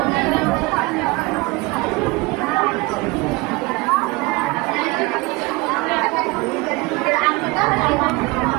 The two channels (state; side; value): quieter; left; 23.9 dB